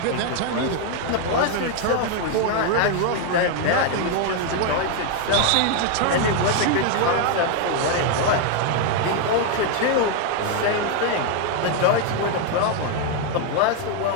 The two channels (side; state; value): both; different; correlation 0.01